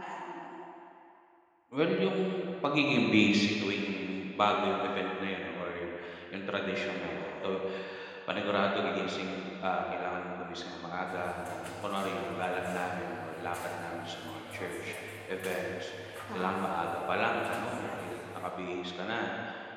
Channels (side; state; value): both; identical; correlation 1.00